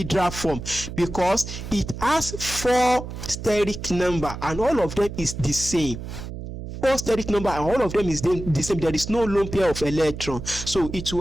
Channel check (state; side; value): noise; right; hum, 9 dB below the sound